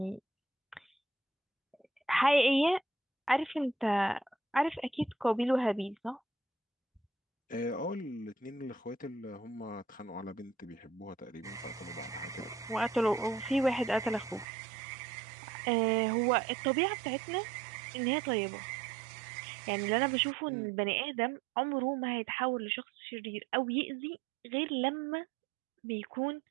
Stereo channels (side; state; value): left; drops out; at 14.5 s